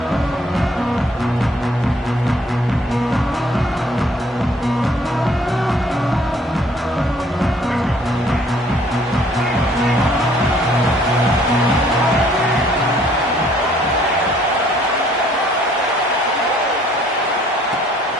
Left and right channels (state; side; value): normal; both; correlation 0.60